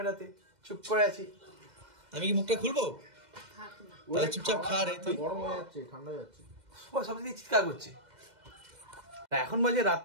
চুপ করে আছি। আমি কি মুখটা খুলবো? তাহলে চুপচাপ খা রে। তুই গরম হয়ে যাচ্ছে, ঠান্ডা হয়ে যাচ্ছে, সবদিকে চিৎকার করছে। এখন বাজে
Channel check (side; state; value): left; late; 2.1 ms